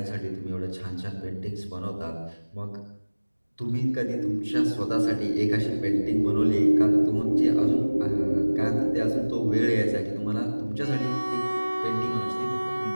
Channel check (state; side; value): inverted; both; correlation -1.00